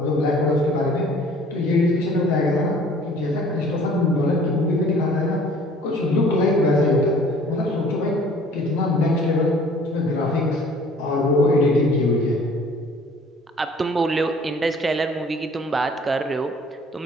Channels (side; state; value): both; normal; correlation 0.52